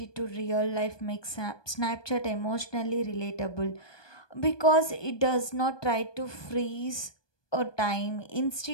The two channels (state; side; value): late; right; 1.2 ms